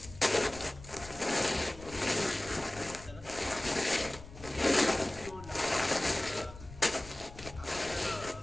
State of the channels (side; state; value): left; noise; rumble, 16 dB below the sound